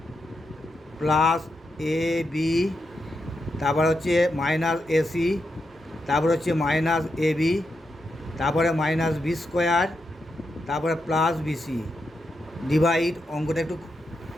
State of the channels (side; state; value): both; normal; correlation 0.85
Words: প্লাস এ বি, তারপর হচ্ছে মাইনাস এসি, তারপর হচ্ছে মাইনাস এ বি, তারপরে মাইনাস বি স্কোয়ার, তারপরে প্লাস বিসি ডিভাইড, অঙ্কটা একটু